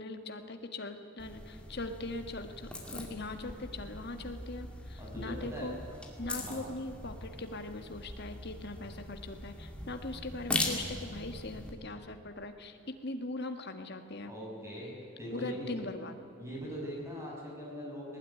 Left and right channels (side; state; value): both; normal; correlation 0.26